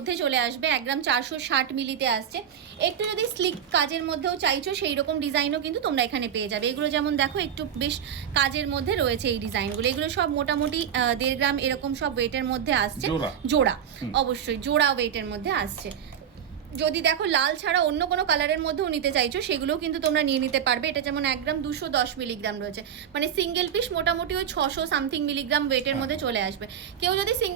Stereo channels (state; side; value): quieter; left; 8.8 dB